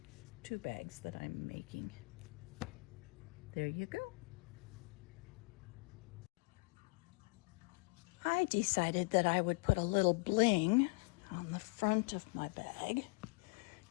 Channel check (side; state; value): right; quieter; 29.1 dB